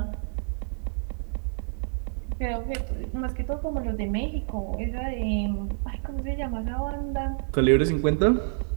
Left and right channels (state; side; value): silent; left; digital silence